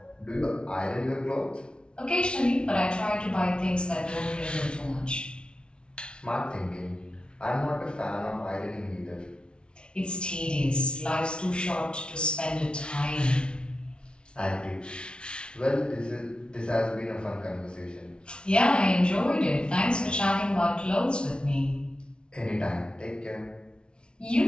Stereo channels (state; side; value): late; right; 0.057 ms